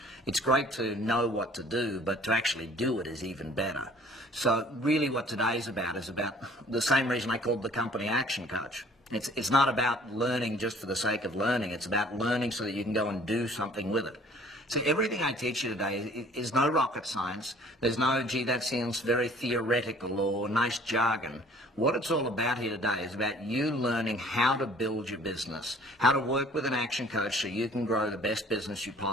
It's great to know what to do, but to actually do it is even better. So really what today's about is about the same reason I called the company Action Coach. It's not about learning just for the sake of learning. It's about learning so that you can go and do something with it. See, everything I teach you today is no rocket science. There's no, gee, that sounds very theoretical or nice jargon. What it's all about here today is about you learning how to build your business, how to work with an action coach so you can grow the best business you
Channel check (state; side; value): normal; both; correlation 0.53